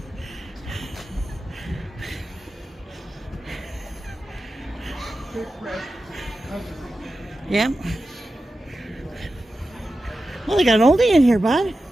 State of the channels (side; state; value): both; normal; correlation 0.92